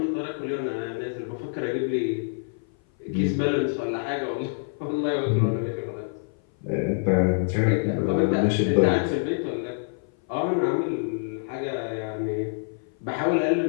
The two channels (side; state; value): right; silent; 57 dB below the other